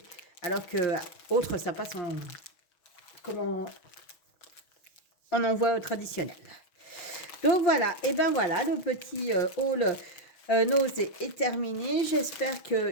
Alors que autre, ça passe en envoi traditionnel. Donc voilà, et ben voilà, le petit haul nausée est terminé. J'espère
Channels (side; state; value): right; late; 6.2 ms